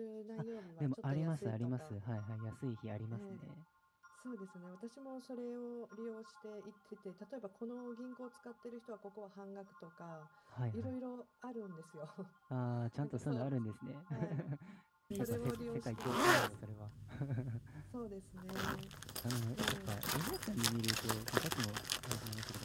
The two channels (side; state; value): both; identical; correlation 1.00